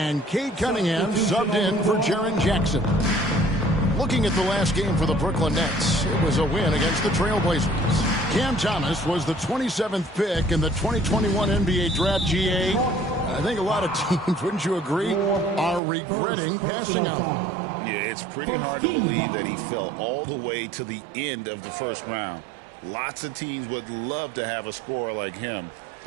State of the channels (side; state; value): left; drops out; at 15.8 s